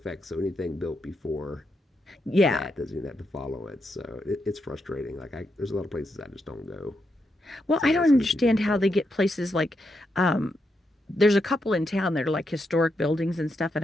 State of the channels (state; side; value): normal; both; correlation 0.83